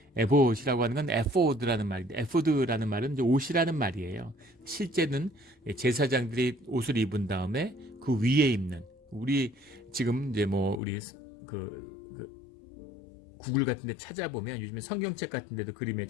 에봇이라고 하는 건 에포드라는 말인데, 에포드라는 말은 이제 옷이라는 말이에요. 실제는 제사장들이 옷을 입은 다음에 그 위에 입는, 우리 지금 이제 뭐 우리 그 구글 같은 데 찾아보면 요즘에 성경책 같은 데도 그림에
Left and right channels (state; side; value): drops out; right; at 10.8 s